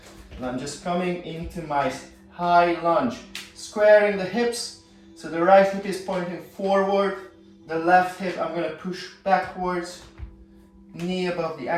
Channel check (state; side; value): identical; both; correlation 1.00